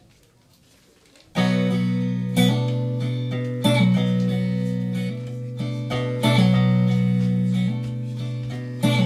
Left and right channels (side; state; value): both; identical; correlation 1.00